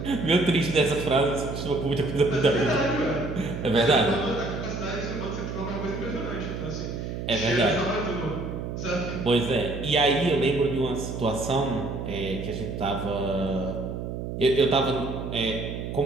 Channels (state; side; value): noise; right; hum, 6 dB below the sound